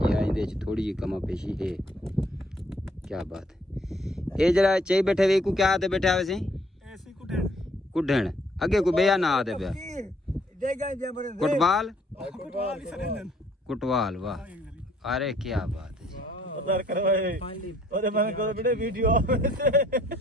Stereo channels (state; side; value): normal; both; correlation 0.64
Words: या इंदे च थोड़ी जी कमा पेशी है। क्या बात है। ये जड़ा चाहिए बैठे वे को क्या आते बैठे वैसे ऐसे कुढ़ण आगे को बेया ना आते पे कुटवाल कुटवाल वाह अरे क्या बात है।